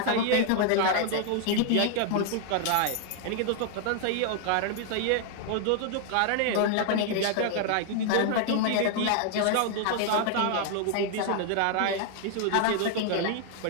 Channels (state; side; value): different; both; correlation 0.00